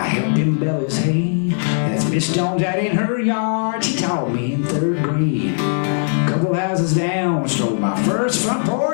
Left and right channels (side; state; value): right; silent; 67 dB below the other